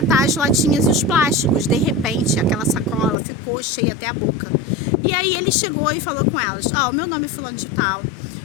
as latinhas e os plásticos. De repente, aquela sacola ficou cheia até a boca. E aí ele chegou e falou com elas: o meu nome é fulano de tal.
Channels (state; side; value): drops out; right; at 3.2 s